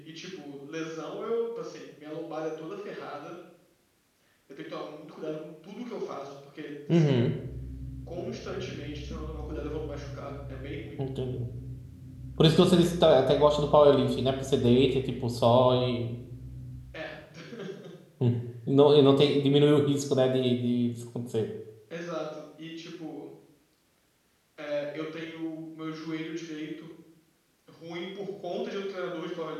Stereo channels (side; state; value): both; identical; correlation 1.00